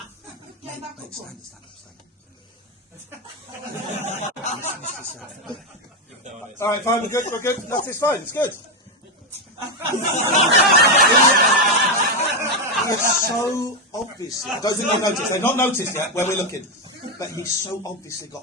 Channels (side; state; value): both; normal; correlation 0.07